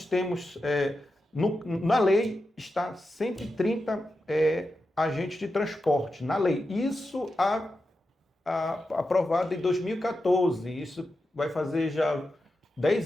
temos, na lei está 130 agentes de transporte, na lei. Isso aprovado em 2014, isso vai fazer já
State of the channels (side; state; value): both; normal; correlation 0.89